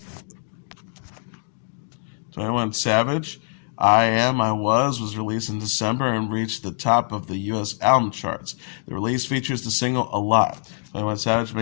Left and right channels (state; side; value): silent; right; digital silence